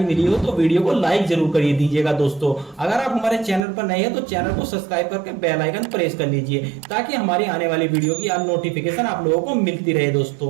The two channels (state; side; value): drops out; left; at 3.6 s